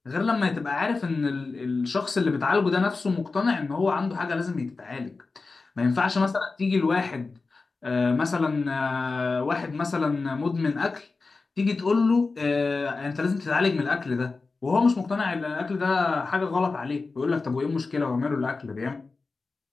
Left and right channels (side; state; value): right; quieter; 4.0 dB